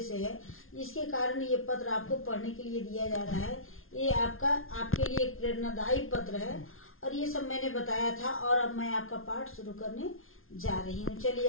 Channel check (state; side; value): late; right; 0.61 ms